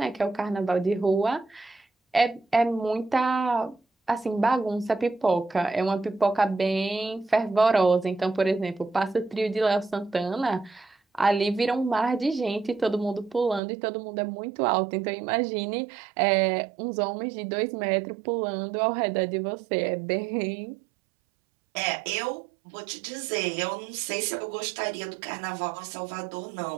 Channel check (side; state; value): left; drops out; at 13.6 s